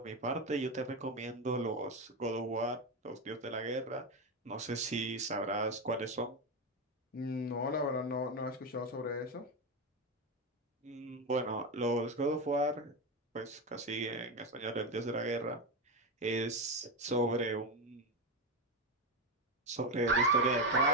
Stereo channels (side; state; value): both; normal; correlation 0.12